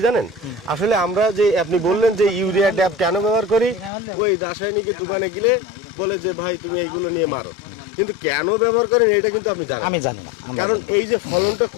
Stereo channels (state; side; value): drops out; right; at 3.9 s